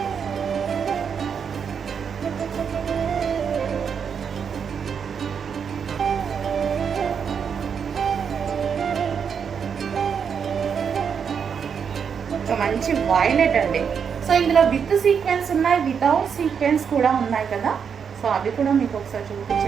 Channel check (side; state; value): left; quieter; 6.9 dB